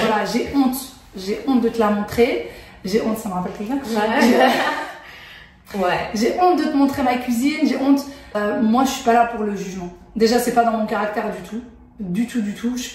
j'ai honte de te la montrer. J'ai honte, ça me rappelle quelqu'un. Ouais. J'ai honte de te montrer ma cuisine, j'ai honte. Moi, je suis pas là pour le jugement. Déjà, c'est pas dans mon caractère du tout. Du tout. Je suis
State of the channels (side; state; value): both; identical; correlation 1.00